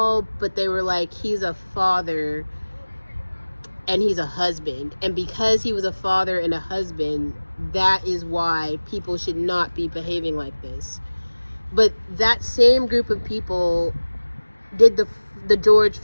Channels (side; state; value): both; inverted; correlation -1.00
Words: but they were like, he's a father and he's a husband, and because he was a father and a husband, that is why people should not be behaving like this. But that same group of people did the George